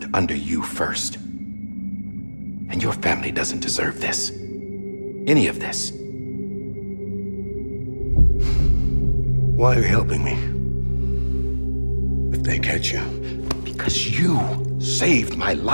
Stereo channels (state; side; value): inverted; both; correlation -1.00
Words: under you first. And your family doesn't deserve this. Any of this. Why are you helping me? If they catch you. Because you saved my